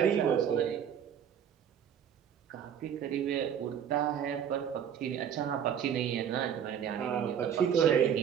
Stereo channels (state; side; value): quieter; left; 8.6 dB